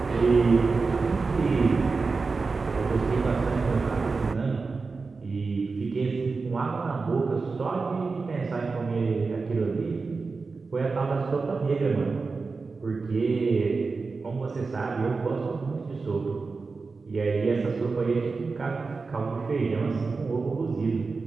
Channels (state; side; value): quieter; left; 4.3 dB